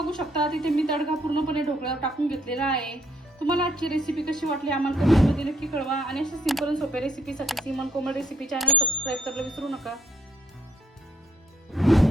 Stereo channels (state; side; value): normal; both; correlation 0.69